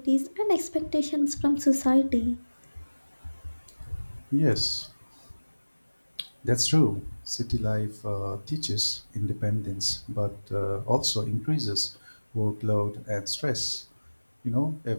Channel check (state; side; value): inverted; both; correlation -1.00